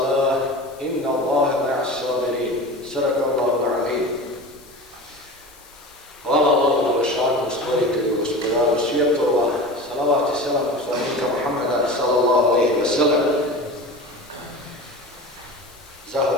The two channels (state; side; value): noise; left; hiss, 24 dB below the sound